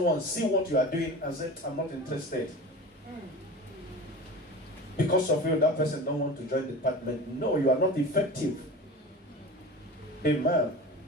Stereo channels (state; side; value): normal; both; correlation 0.33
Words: see what you are doing and say, I'm not interested. Because of you, that person don't want to join the department. No, you are not effective. Amen.